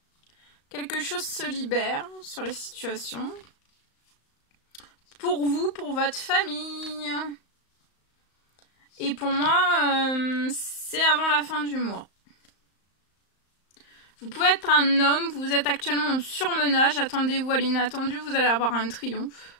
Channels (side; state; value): right; late; 35 ms